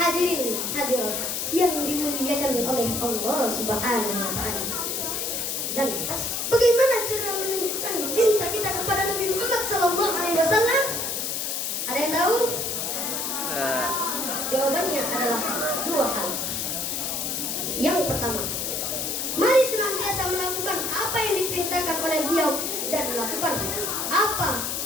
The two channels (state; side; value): noise; left; hiss, 1 dB below the sound